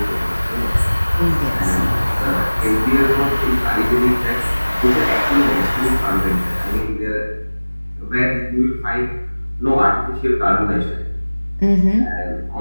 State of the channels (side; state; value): both; inverted; correlation -1.00